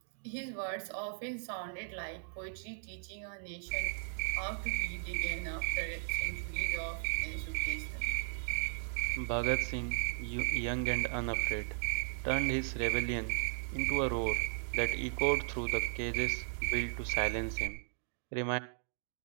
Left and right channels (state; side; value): silent; left; digital silence